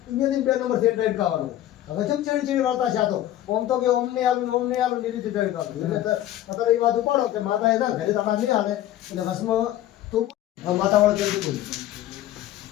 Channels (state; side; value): quieter; right; 13.2 dB